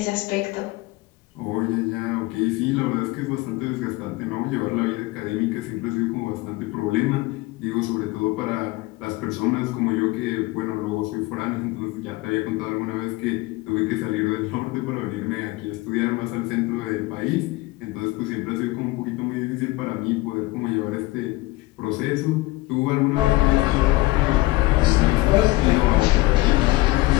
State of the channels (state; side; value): quieter; right; 20.5 dB